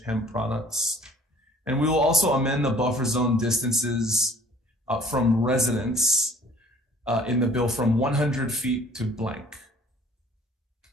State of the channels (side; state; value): both; normal; correlation 0.53